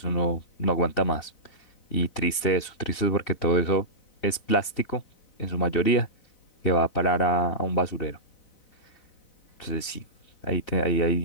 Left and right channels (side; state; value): right; late; 4.0 ms